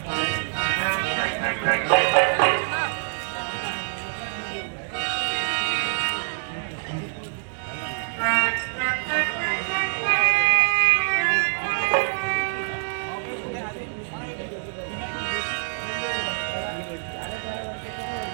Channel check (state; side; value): silent; left; digital silence